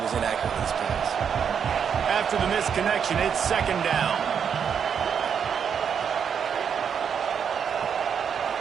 inaccurate with his pass. After the missed connection, it's 2nd down.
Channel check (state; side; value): quieter; left; 7.4 dB